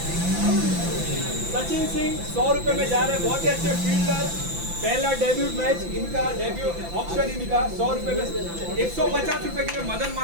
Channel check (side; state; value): left; late; 5.9 ms